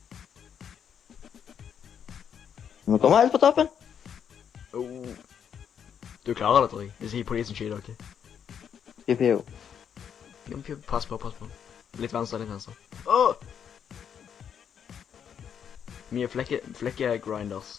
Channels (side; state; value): right; quieter; 8.1 dB